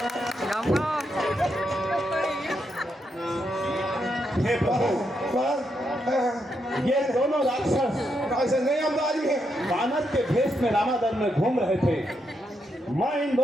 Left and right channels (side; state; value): both; normal; correlation 0.81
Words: हे प्रभु, ये दोनों राक्षस वानर के भेष में रामादल में घूम रहे थे। मैं इन